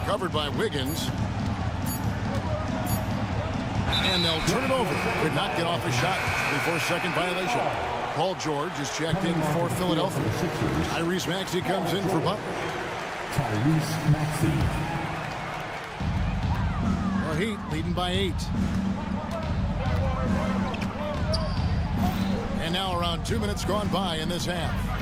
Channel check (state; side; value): identical; both; correlation 1.00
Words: covered by Wiggins. And they'll turn it over. Could not get off a shot before second violation. Paul George is checked in for Philadelphia. Tyrese Maxey comes in for Butler. Tyrese Maxey. The Heat leading by 8. And now around 2 minutes gone by in this half.